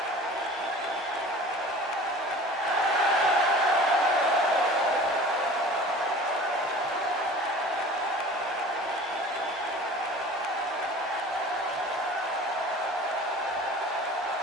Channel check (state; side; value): normal; both; correlation 0.42